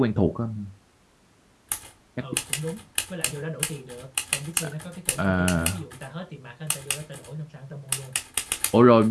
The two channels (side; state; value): both; identical; correlation 1.00